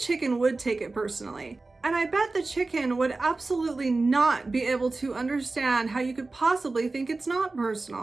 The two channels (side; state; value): left; quieter; 3.5 dB